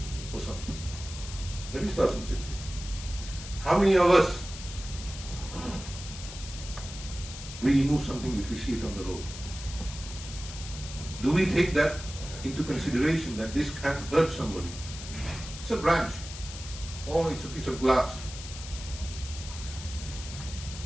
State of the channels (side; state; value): left; noise; hiss, 12 dB below the sound